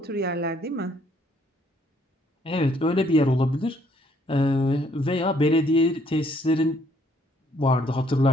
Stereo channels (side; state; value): both; normal; correlation 0.66